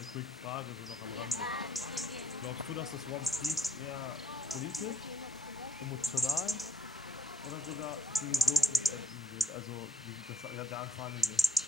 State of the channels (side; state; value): both; normal; correlation 0.72